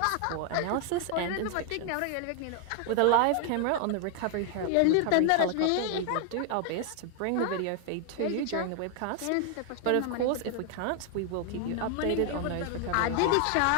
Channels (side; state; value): both; different; correlation 0.00